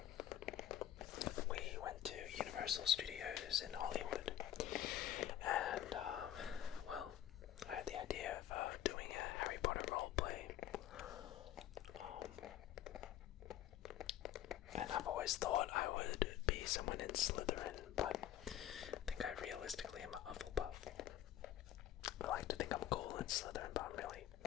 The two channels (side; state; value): right; quieter; 11.8 dB